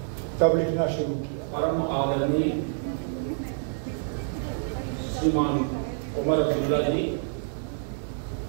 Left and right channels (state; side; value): silent; left; 60 dB below the other